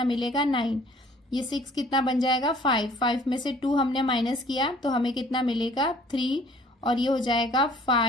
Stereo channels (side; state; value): both; normal; correlation 0.54